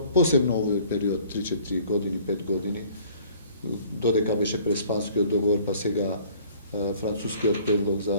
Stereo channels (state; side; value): inverted; both; correlation -0.54